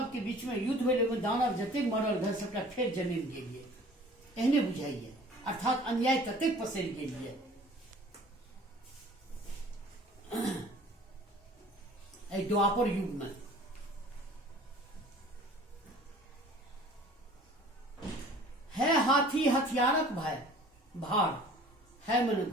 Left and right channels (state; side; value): normal; both; correlation 0.48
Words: के बीच में युद्ध भेल, ओहिमे दानव जतेक मरल रहे सबटा फेर जन्म गेलिए, एहने बुझाइए। अर्थात अन्याय ततेक पसरि गेलिए। एहि द्वापर युग में है हाथी हथियारक भाई भार, है मन